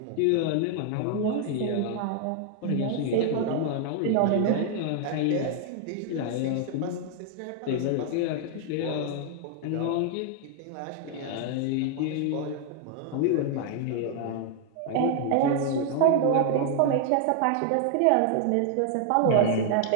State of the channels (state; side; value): different; both; correlation 0.00